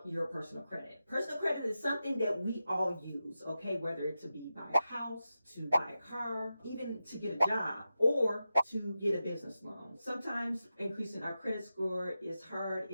your personal credit. Personal credit is something that we all use, okay? Whether it to be buy a house, to buy a car, even to get a job, or to get a business loan. Sometimes increasing our credit score is hard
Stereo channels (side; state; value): both; inverted; correlation -0.91